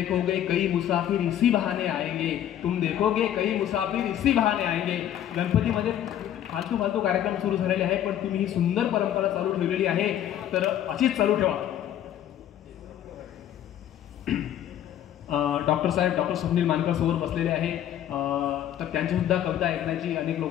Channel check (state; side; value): quieter; right; 11.0 dB